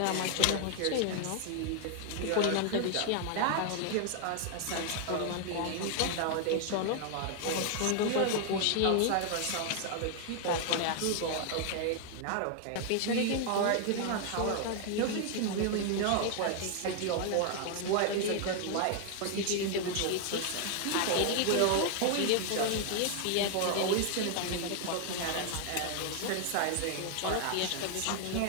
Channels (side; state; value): both; different; correlation 0.00